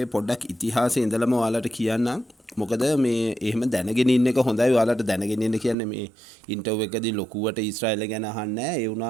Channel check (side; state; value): left; drops out; at 5.8 s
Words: පොඩ්ඩක් ඉතිහාසය ඉඳලම ඔයාලට කියන්නම්. මොකද මේ එහෙම දැනගෙන ඉන්න එක හොඳයි. ඔයාලට දැනගෙන ඉන්න කියන්නේ මේ ඉන්ටර්විව් එකදී ලොකුවට ඊශ්‍රායලය ගැන අහන්නේ නැහැ. ඒ